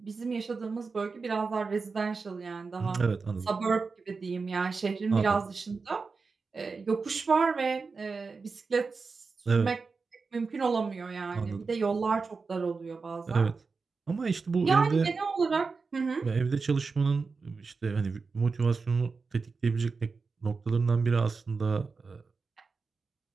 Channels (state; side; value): quieter; left; 4.5 dB